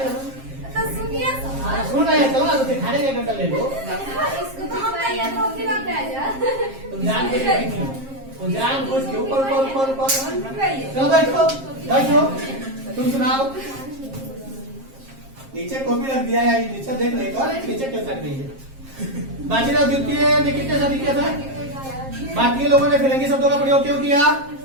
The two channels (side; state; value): left; late; 7.5 ms